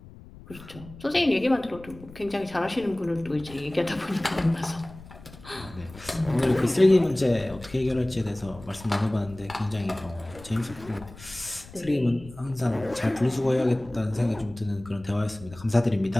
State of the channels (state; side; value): noise; left; rumble, 18 dB below the sound